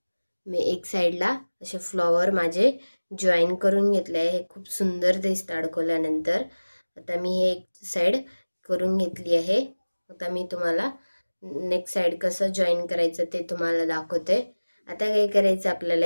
मी एक साईडला असे फ्लॉवर माझे जॉईन करून घेतले आहे. हे खूप सुंदर दिसतं अडकवल्यानंतर. आता मी हे एक साईड करून घेतली आहे. आता मी तुम्हाला नेक्स्ट साईड कसं जॉईन करायचं ते तुम्हाला दाखवते. आता काय करायचं आपल्याला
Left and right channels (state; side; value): inverted; both; correlation -1.00